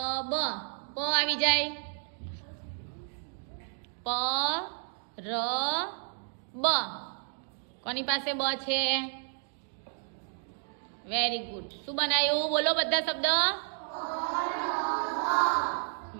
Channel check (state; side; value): silent; left; 57 dB below the other